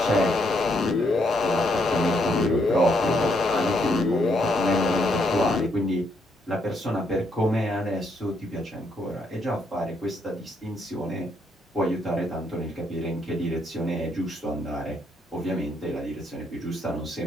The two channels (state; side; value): normal; both; correlation 0.74